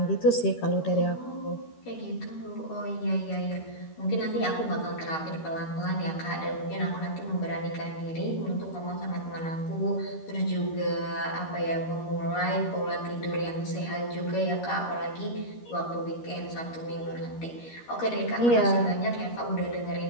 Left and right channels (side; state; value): right; late; 13 ms